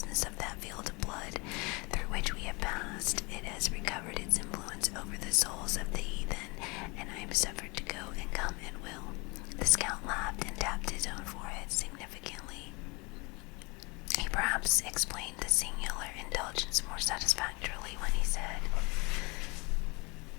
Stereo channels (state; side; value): quieter; right; 28.0 dB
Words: of that field of blood through which we have passed, it has recovered its influence over the souls of the heathen, and I am suffered to go and come at will. The scout laughed and tapped his own forehead significantly. He perhaps explained the singular indulgence more satisfactorily when he said,